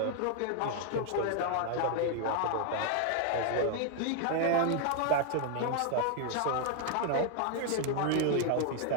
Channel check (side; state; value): both; different; correlation 0.00